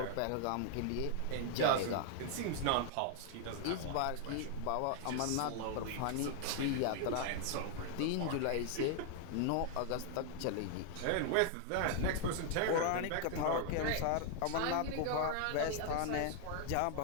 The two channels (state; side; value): different; both; correlation 0.00